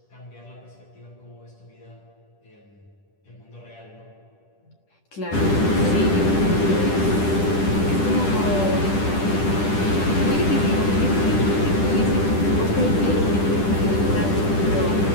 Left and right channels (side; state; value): right; late; 10 ms